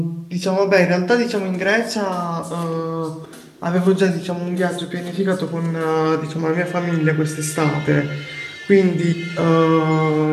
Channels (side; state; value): both; identical; correlation 1.00